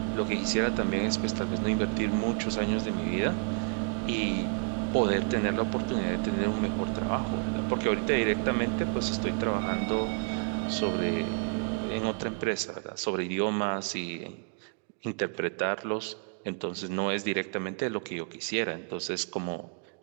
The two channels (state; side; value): quieter; left; 37.2 dB